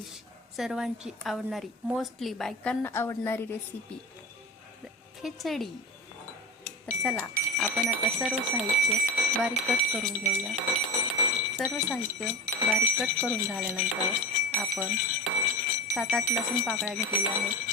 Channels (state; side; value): normal; both; correlation 0.28